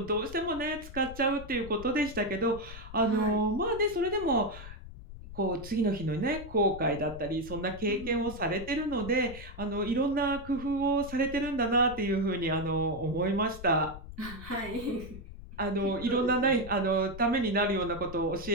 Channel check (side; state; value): left; noise; rumble, 13 dB below the sound